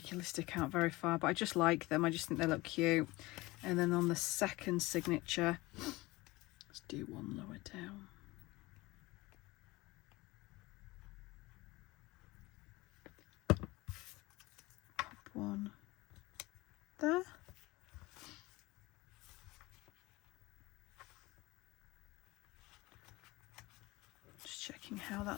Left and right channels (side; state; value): right; quieter; 21.2 dB